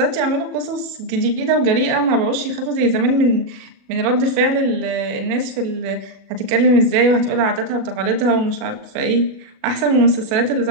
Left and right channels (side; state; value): left; late; 36 ms